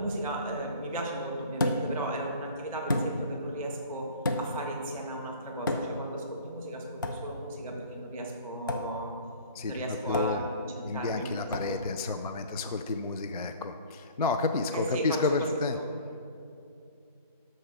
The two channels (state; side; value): inverted; both; correlation -0.46